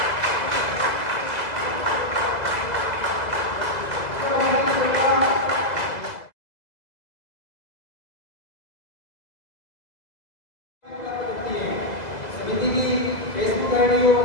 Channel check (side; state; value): right; late; 2.0 ms